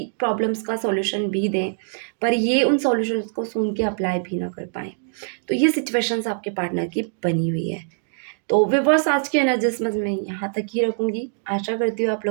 प्रॉब्लम्स का सॉल्यूशन भी दें, पर ये उन सॉल्यूशंस को सुन के अप्लाई भी ना कर पाएँ। तो ये सिचुएशंस आपके पार्टनर की बनी हुई है। तो व्यूअर्स, आज की एनालिसिस मैं यहाँ तक ही रखूँगी। आशा करती हूँ आप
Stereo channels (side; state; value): left; silent; digital silence